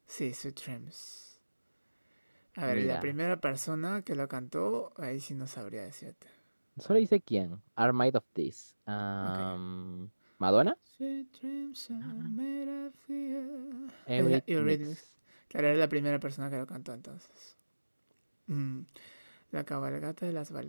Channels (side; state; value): both; inverted; correlation -1.00